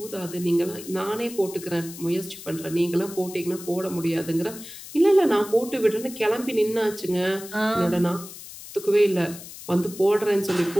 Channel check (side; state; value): left; noise; hiss, 14 dB below the sound